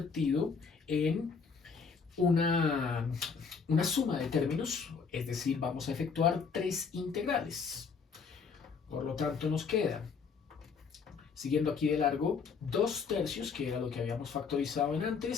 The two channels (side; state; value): right; quieter; 5.5 dB